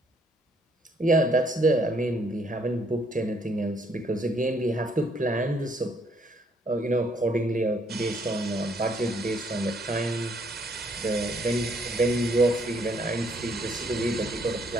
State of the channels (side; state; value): both; normal; correlation 0.68